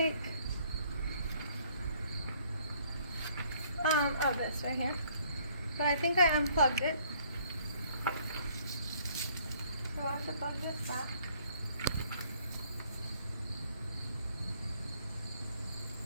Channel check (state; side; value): inverted; both; correlation -0.62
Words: this right here. But I think I unplugged it. So I have to plug this back.